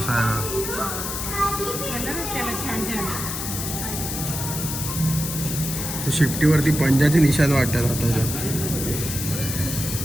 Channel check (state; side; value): noise; left; hiss, 4 dB below the sound